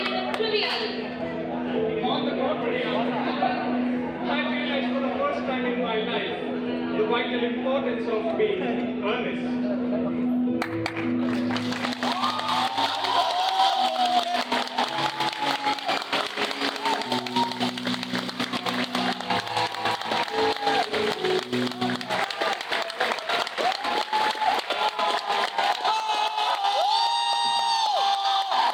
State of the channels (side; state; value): both; identical; correlation 1.00